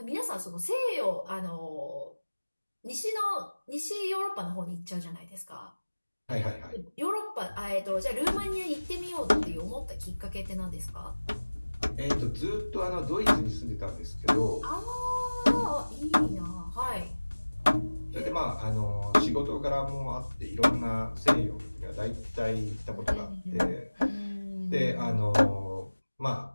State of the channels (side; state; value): both; inverted; correlation -1.00